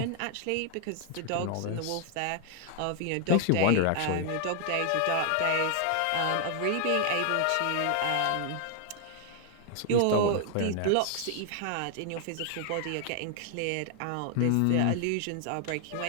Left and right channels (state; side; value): different; both; correlation 0.00